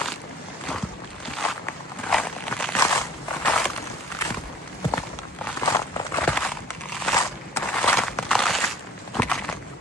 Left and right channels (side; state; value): both; normal; correlation 0.51